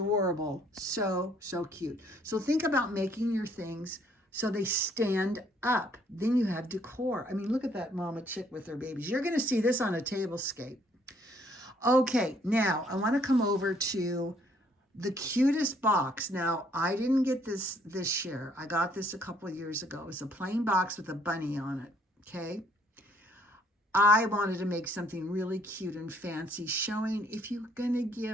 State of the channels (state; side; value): normal; both; correlation 0.65